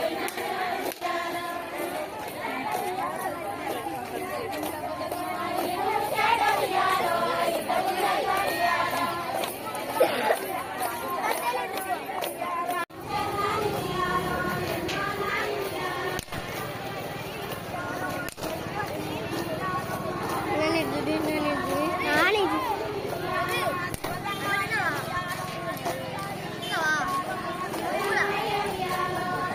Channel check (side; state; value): both; identical; correlation 1.00